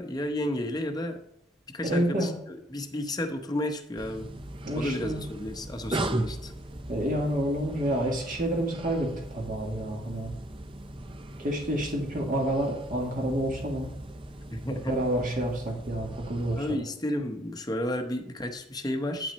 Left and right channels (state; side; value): normal; both; correlation 0.64